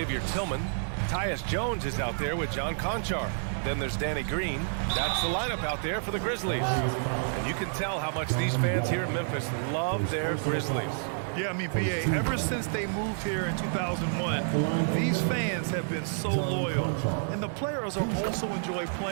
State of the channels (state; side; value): silent; left; digital silence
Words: Tillman. Tyus Jones is out there with John Conchar. Then there's Danny Green. That's the lineup out there for the Grizzlies. And you can tell how much these fans here in Memphis love their Grizzlies. Yeah, I mean, B.A., ever since they moved here in 2001, these fans have been so loyal. And the players are also enjoy